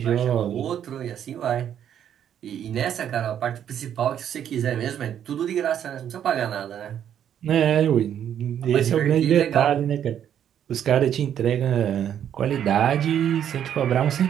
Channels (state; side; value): quieter; left; 9.6 dB